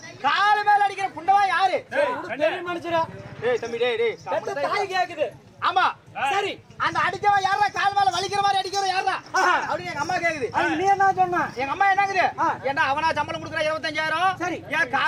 கால் மேல அடிக்கிற புண்டவா யாரு மனுஷரா டேய் தம்பி டேய் தாய் கேக்குது ஆமா சரி அந்த அடிச்சவன் யாரா கால் மேல வலிக்கிற மாதிரி அடிக்கிறவன் யாரா அப்படின்னு எங்க அம்மா கேக்குது நீ என்ன சொன்ன எங்க அம்மா என்னங்குது ஏண்டா அவனா சம்பளம் கொடுக்குற 25000 சரி ஏன்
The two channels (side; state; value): both; identical; correlation 1.00